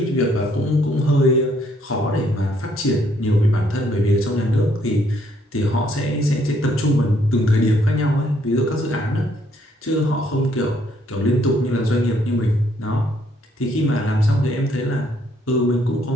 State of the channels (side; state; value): both; normal; correlation 0.68